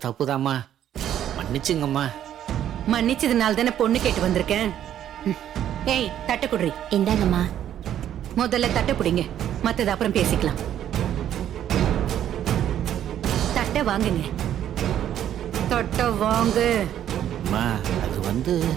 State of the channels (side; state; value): left; quieter; 10.8 dB